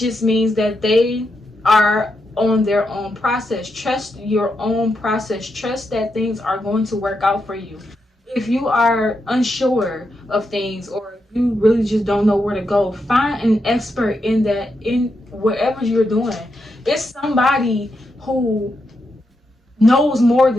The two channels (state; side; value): normal; both; correlation 0.84